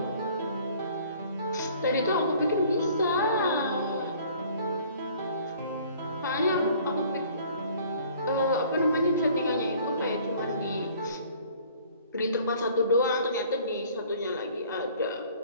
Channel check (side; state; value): both; inverted; correlation -0.53